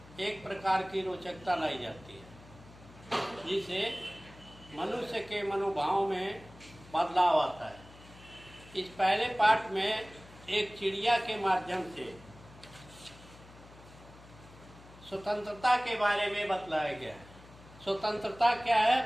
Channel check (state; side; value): noise; left; hum, 21 dB below the sound